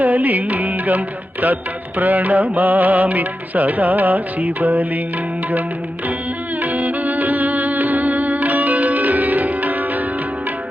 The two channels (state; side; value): normal; both; correlation 0.90